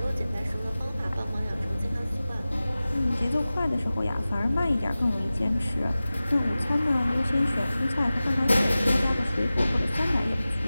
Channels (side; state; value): both; inverted; correlation -0.96